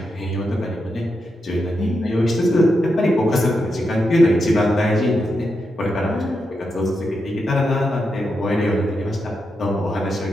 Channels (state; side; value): normal; both; correlation 0.85